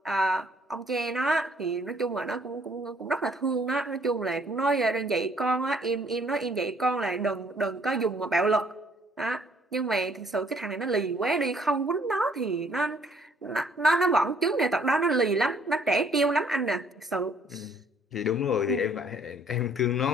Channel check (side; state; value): both; normal; correlation 0.62